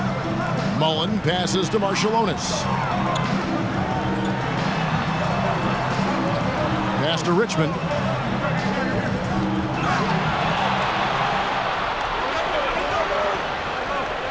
Mullen passes to Marciulionis. Pass to Richmond.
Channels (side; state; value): both; identical; correlation 1.00